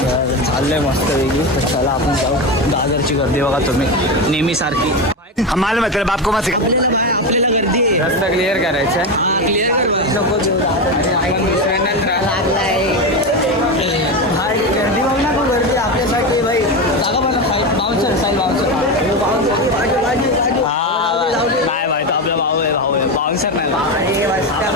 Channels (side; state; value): both; normal; correlation 0.16